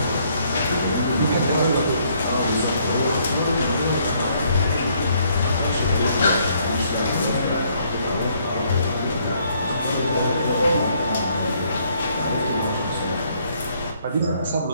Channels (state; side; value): inverted; both; correlation -0.68